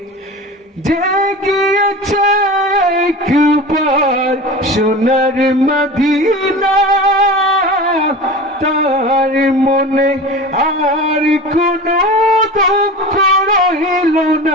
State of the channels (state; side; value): normal; both; correlation 0.33